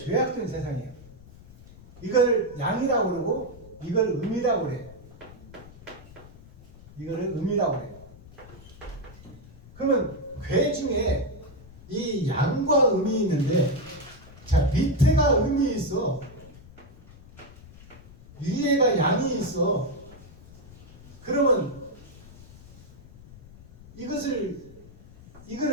세상이에요. 이걸 양이라고 그러고 이걸 음이라고 그래요. 이거를 음이라고 그래요. 그러면 괴 중에 이 양과 음이 있는데 자 밑에가 음이 있어. 위에가 양이 있어. 그러면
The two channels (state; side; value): noise; left; rumble, 20 dB below the sound